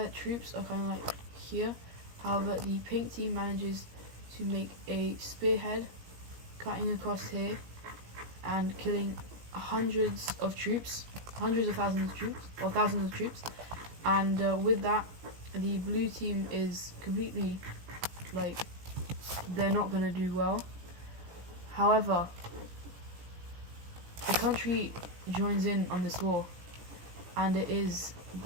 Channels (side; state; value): left; late; 17 ms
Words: troops are kind of like here. However, the pink team manages to make a spearhead, cutting across here and killing hundreds of thousands of troops. And with that, the blue team is completely, like, they're not going to do well. However, the country joins in on this war, and it is